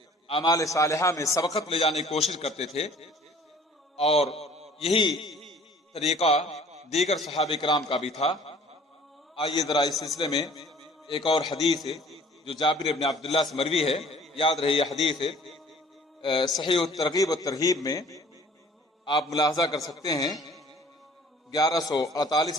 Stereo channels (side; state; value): both; normal; correlation 0.52